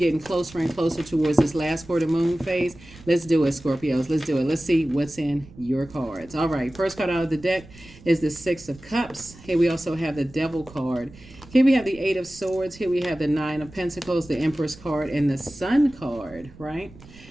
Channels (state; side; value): noise; right; rumble, 21 dB below the sound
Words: closer and closer towards this last quarter moon phase, let's do it, Scorpios. Let's do it. Let's see what's in your cards. All right, first card out of the deck is the Six of Cups. Here we also have the Devil card. Here we have the Eight of Swords. Here we have the Nine of Pentacles, the Empress card, and the Sun card, right?